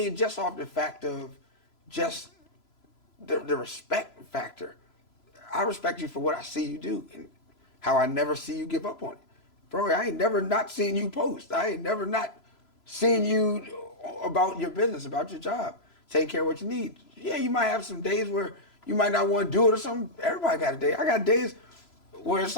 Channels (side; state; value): right; late; 3.0 ms